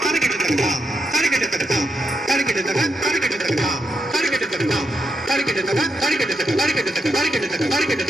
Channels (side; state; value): both; normal; correlation 0.83